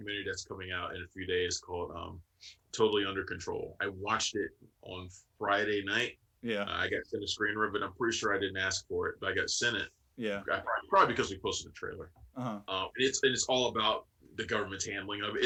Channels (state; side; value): identical; both; correlation 1.00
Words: that's coming out in a few days called "Totally Under Control." I watched it on Friday night. Yeah. I got sent a screener, but I'm pretty sure I didn't ask for it, but I got sent it. Yeah. Probably because we posted the trailer. And it's all about the government's handling of it.